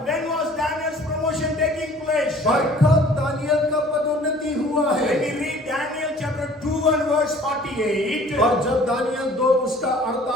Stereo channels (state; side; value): normal; both; correlation 0.51